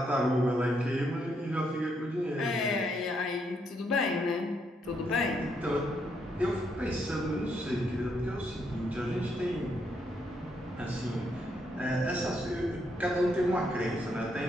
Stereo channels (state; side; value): normal; both; correlation 0.76